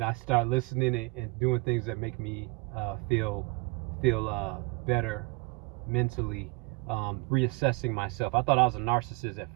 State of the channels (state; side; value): quieter; left; 27.9 dB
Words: I start listening and doing things that make me feel better mentally. Reassessing myself. I thought I was a narcissist at